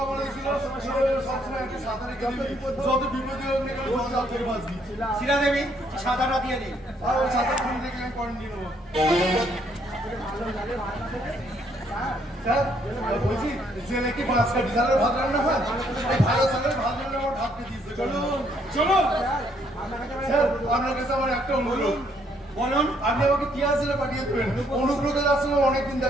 বলেছিল সবসময় একটা সাঁতারে গেলে যত বিপদে হোক না কেন জল থেকে বাঁচবি। শিলা দেবী ছাতাটা দিয়ে দিন। আর ওই সাঁতার খুলে দেখে আমি কোয়ারেন্টাইন নেবো। স্যার, বলছি জেলে কি 5 কাঠি চালের ভাত রান্না হয়? এই ভালো চালের ভাত রান্না আমার ভাতকে দিয়েছে। চলুন চলো স্যার, আপনার কাছে আমার একটা অনুরোধ। বলুন। আপনি আমাকে টিয়া জেলে পাঠিয়ে দেবেন। অনুব্রতের আসলে অনেকদিন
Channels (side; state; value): both; normal; correlation 0.69